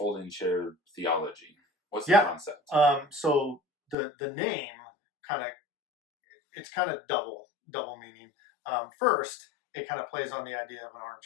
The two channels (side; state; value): right; drops out; at 4.0 s